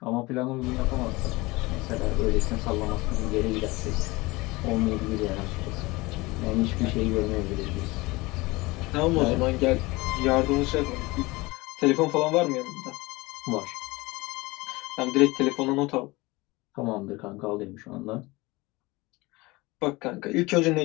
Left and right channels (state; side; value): quieter; right; 22.4 dB